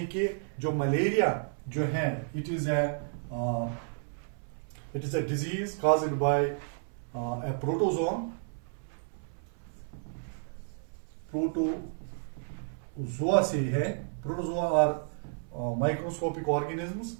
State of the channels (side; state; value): left; silent; 57 dB below the other